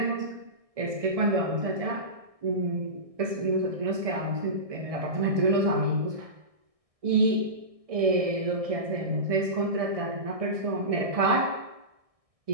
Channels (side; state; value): left; late; 1.6 ms